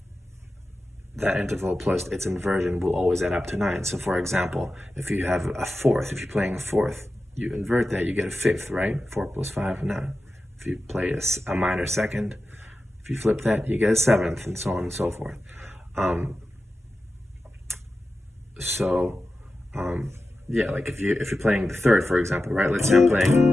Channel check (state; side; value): normal; both; correlation 0.93